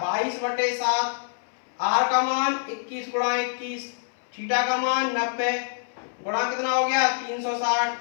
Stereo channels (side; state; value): right; silent; 61 dB below the other